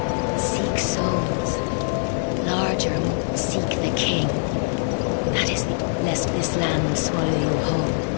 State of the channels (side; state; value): right; silent; 57 dB below the other